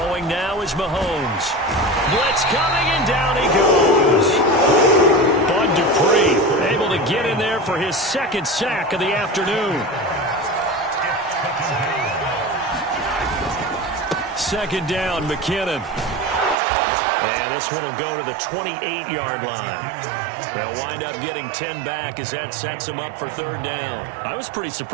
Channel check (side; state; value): left; drops out; at 16.6 s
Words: now is Mahomes. Blitz coming, and down he goes. Bud Dupree able to get in there for his 2nd sack of the afternoon. 2nd down, McKinnon. And this one will go to the 28-yard line. They'll wind up getting 10 back as that sets them up for 3rd down. I was pretty